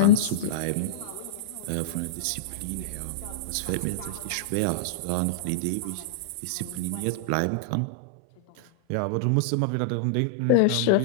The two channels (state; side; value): different; both; correlation -0.02